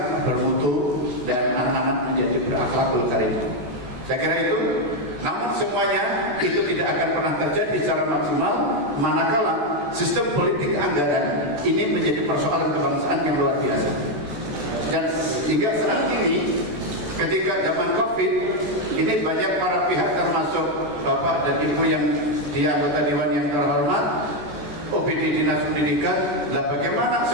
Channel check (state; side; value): late; left; 14 ms